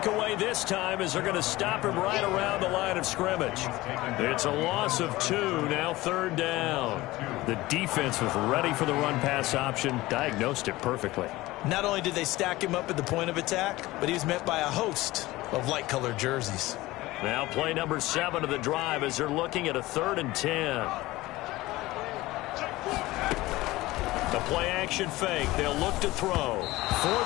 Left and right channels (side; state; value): right; quieter; 18.7 dB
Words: away this time as they're going to stop him right around the line of scrimmage. It's a loss of 2, now 3rd down. The defense was ready for the run-pass option, diagnosed it perfectly. Not only did they stack him up at the point of attack, but he was met by a host of light-colored jerseys. Now play number 7 of the drive as they're looking at a 3rd and 10. The play action fake. They'll look to throw.